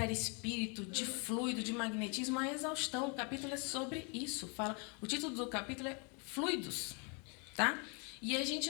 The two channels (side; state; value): right; quieter; 34.8 dB